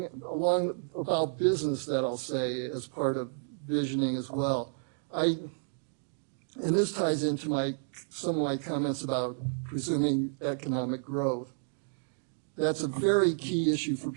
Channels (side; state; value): left; silent; digital silence